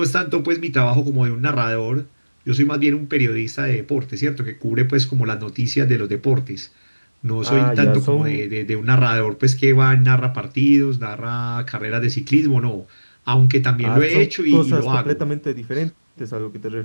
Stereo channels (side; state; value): both; inverted; correlation -1.00